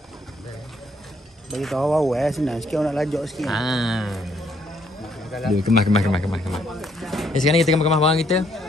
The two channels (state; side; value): normal; both; correlation 0.69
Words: Bagi tahu awak senang sikit nak lajak sikit. Dia kemas. Sekarang ni kita kemas barang kita.